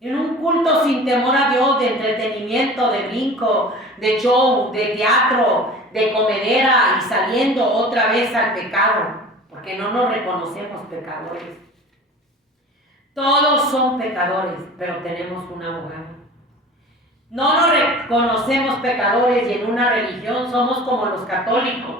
En un culto sin temor a Dios, de entretenimiento, de brinco, de show, de teatro, de comedera y saliendo otra vez al pecado. Porque no nos reconocemos pecadores. Todos son pecadores, pero tenemos un abogado. No nos reconocemos pecadores y en una religión somos como los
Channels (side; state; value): both; normal; correlation 0.40